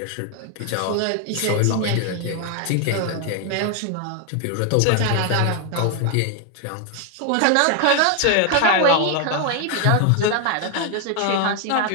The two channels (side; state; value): both; different; correlation 0.01